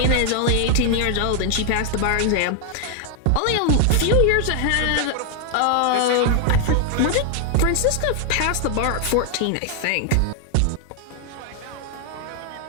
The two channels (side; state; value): both; different; correlation 0.00